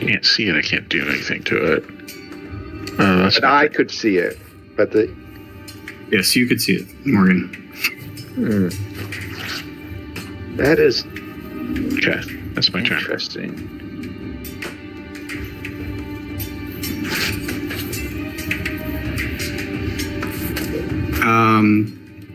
Can't see it. I can't do anything to it. That's And I could see it, but the Yes, you could see it, Morgan. that is okay. That's my turn. interesting.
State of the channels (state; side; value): identical; both; correlation 1.00